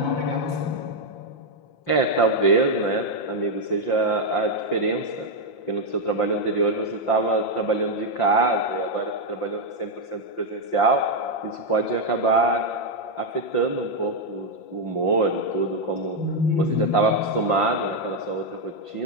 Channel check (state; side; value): late; right; 5.8 ms